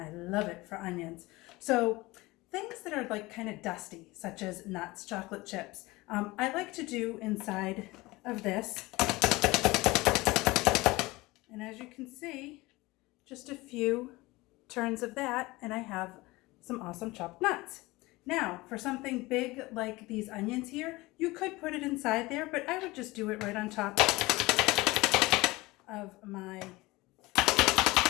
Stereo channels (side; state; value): right; quieter; 21.1 dB